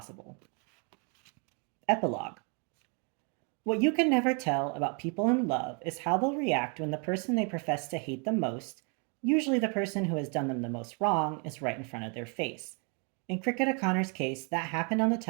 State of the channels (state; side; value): quieter; left; 35.7 dB